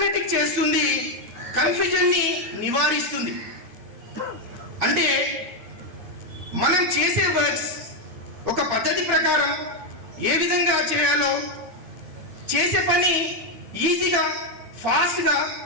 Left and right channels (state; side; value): late; left; 9.3 ms